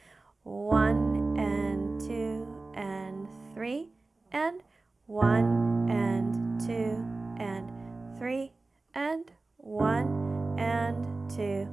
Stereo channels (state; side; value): quieter; left; 3.4 dB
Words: 1 and 2 and 3 and 1 and 2 and 3 and 1 and 2